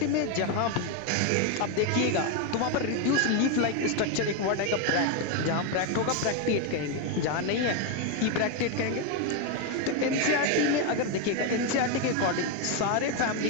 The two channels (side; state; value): both; different; correlation 0.02